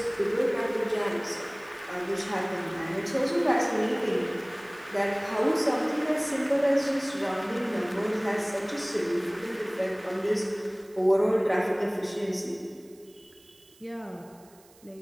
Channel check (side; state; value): right; noise; hiss, 27 dB below the sound